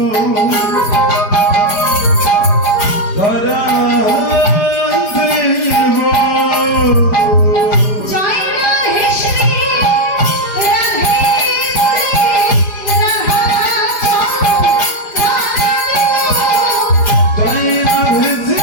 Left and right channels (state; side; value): late; right; 4.9 ms